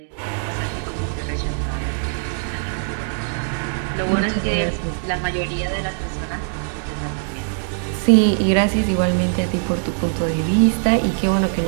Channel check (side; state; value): left; silent; 65 dB below the other